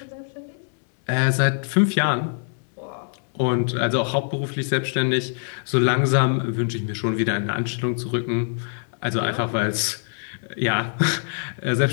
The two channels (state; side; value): silent; right; 63 dB below the other